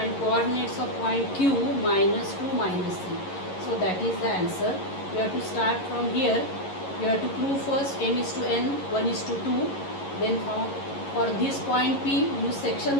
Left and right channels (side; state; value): right; late; 11 ms